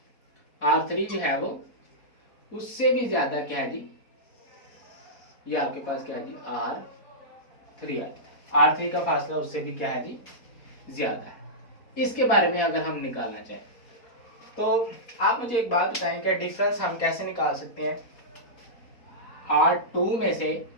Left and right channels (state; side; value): late; right; 4.2 ms